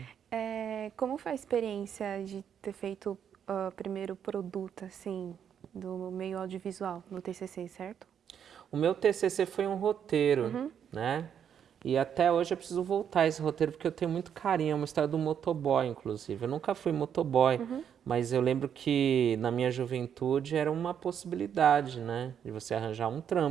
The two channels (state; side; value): quieter; left; 8.5 dB